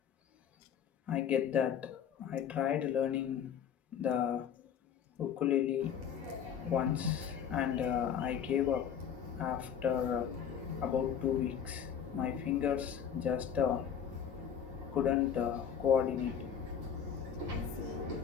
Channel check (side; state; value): right; quieter; 8.3 dB